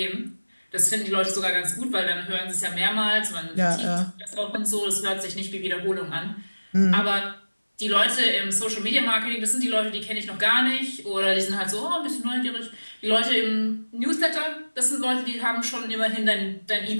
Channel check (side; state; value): both; inverted; correlation -1.00